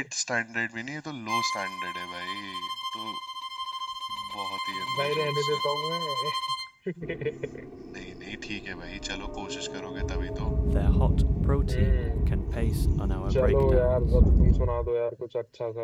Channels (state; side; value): identical; both; correlation 1.00